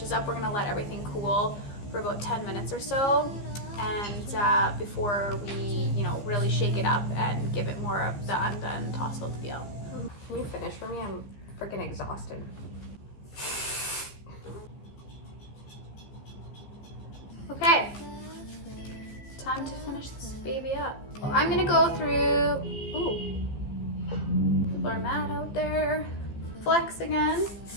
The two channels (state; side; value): late; right; 15 ms